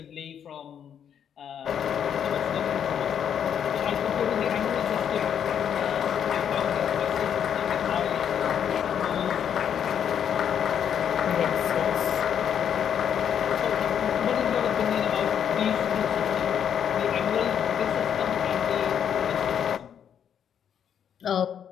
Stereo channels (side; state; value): right; quieter; 8.6 dB